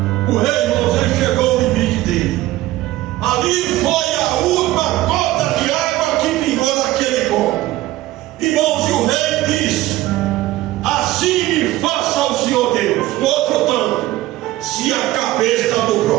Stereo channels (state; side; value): quieter; left; 16.4 dB